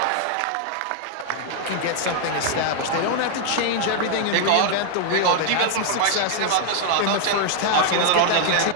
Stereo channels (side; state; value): both; different; correlation 0.00